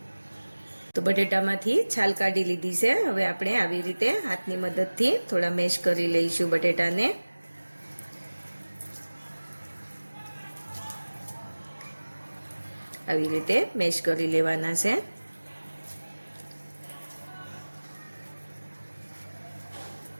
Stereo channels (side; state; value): both; inverted; correlation -1.00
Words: तो बटेटामांथी छाल काढी लीधी छे। हवे आपणे आवी रीते हाथनी मददथी थोड़ा मेश करी लईशुं बटेटाने। आवी रीते मेश करी लेवाना छे।